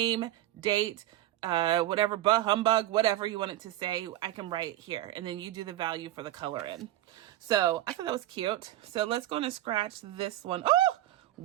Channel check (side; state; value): left; quieter; 14.3 dB